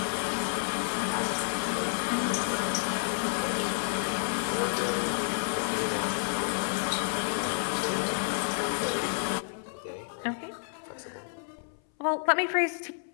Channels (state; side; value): silent; right; 58 dB below the other